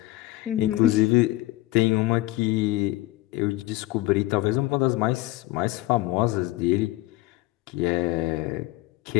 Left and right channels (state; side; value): quieter; right; 18.0 dB